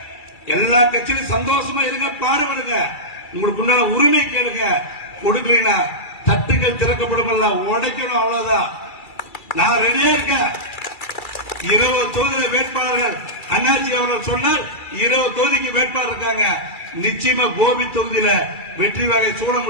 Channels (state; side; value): late; right; 2.3 ms